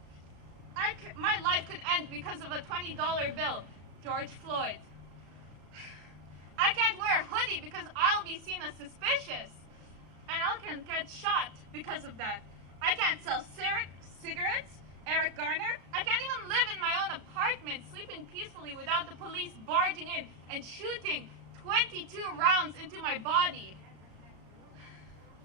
My life could end because of a $20 bill, George Floyd. I can't wear a hoodie because I'll be seen as suspicious, and I can get shot because of that. I can't sell cigarettes, Eric Garner. I can't even live in my own apartment, sleeping peacefully without the police barging in and shooting 22 rounds into my body.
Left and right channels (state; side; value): late; left; 34 ms